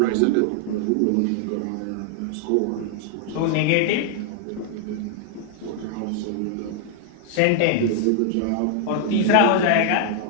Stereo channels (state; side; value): different; both; correlation -0.01